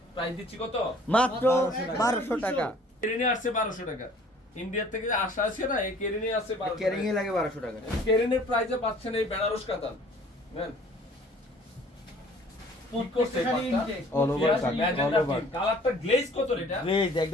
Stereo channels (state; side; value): normal; both; correlation 0.53